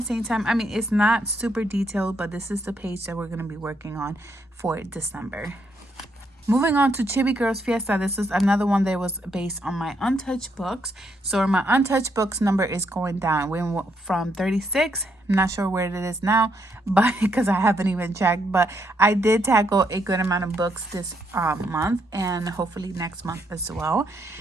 same time. I mean, it's not super detailed, but this is the page that we're gonna be working on for December. Moving on to Chibi Girls Fiesta. This is another one that was based on my Untouched books. So my Untouched books number is going down. We went from 36. I'm not sure where it is now, but because I haven't even checked. But I did tackle a good amount of books this month, and hopefully next month as well.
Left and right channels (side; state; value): both; normal; correlation 0.76